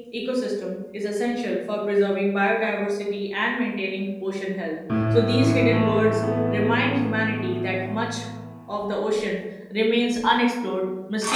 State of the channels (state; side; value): identical; both; correlation 1.00